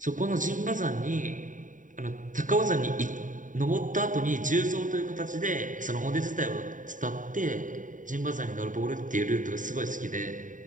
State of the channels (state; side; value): late; left; 0.38 ms